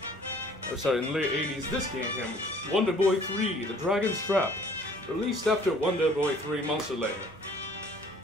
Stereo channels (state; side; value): normal; both; correlation 0.55